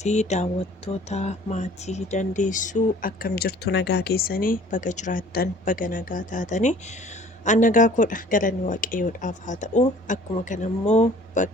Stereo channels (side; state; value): both; normal; correlation 0.51